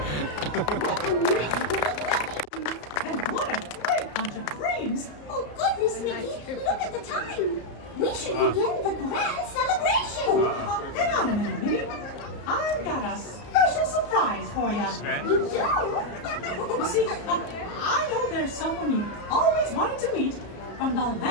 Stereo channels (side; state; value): right; late; 34 ms